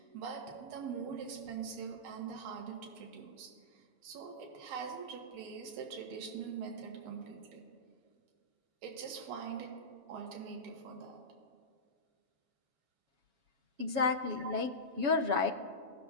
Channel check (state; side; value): late; left; 7.2 ms